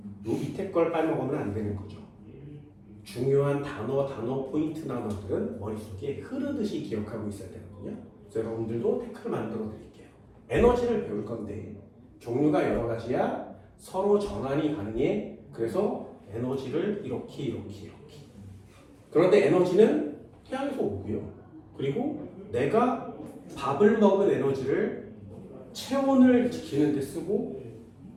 요 밑에 걸 빼먹으면 안 되는 거죠. 중요한 단어 포인트 단어들은 머릿속에 흐르듯이 기억하고 있어야 되거든요. 그래서 여러분들도 태클 만들어 드릴게요. 에너지를 배울 건데 종류가 여러 가지야. 서로 전환이 가능해. 그래서 에너지를 이렇게. 그런데 에너지는 태양에서 오고요. 그리고 내가 밥을 먹은 에너지를 체온을 지키는 데 쓰고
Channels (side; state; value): both; identical; correlation 1.00